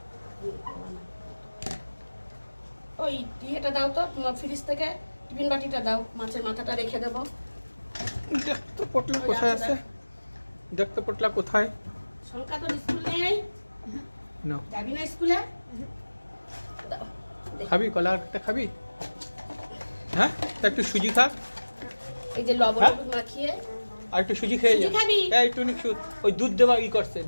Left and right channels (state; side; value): inverted; both; correlation -1.00